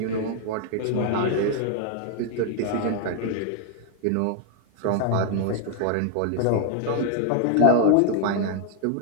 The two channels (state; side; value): different; both; correlation 0.01